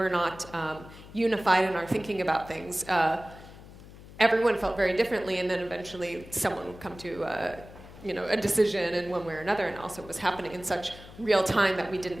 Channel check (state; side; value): noise; left; hum, 18 dB below the sound